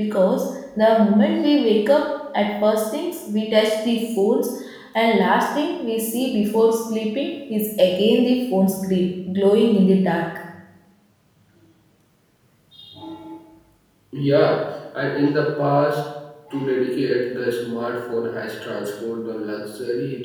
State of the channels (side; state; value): both; identical; correlation 1.00